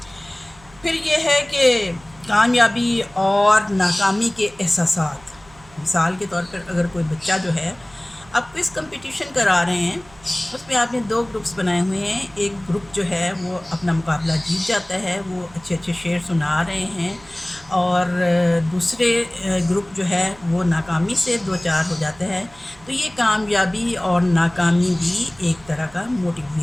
پھر یہ ہے کہ کامیابی اور ناکامی کے احساسات. مثال کے طور پر اگر کوئی بچہ جو ہے آپ کوئز کمپٹیشن کرا رہے ہیں، اس میں آپ نے 2 گروپس بنائے ہوئے ہیں. ایک گروپ جو ہے وہ اپنا مقابلہ جیت جاتا ہے، وہ اچھے اچھے شعر سنا رہے ہیں، اور دوسرے گروپ جو ہے وہ ناکامی سے 2-4 ہو جاتا ہے. تو یہ کامیابی اور ناکامی بھی ایک طرح کا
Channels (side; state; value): right; noise; hum, 25 dB below the sound